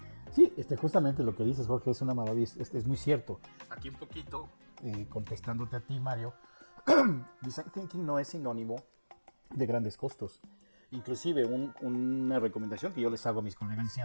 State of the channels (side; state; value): both; inverted; correlation -1.00